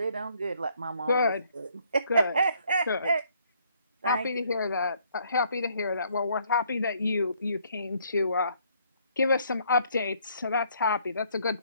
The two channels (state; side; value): inverted; both; correlation -0.66